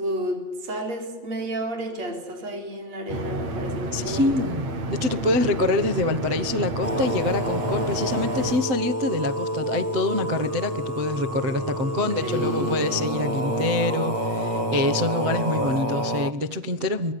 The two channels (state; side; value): late; left; 7.8 ms